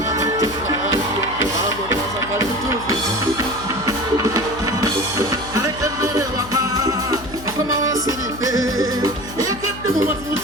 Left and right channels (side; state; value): left; noise; hum, 14 dB below the sound